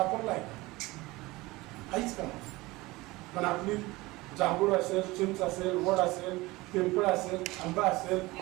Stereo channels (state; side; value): quieter; left; 21.1 dB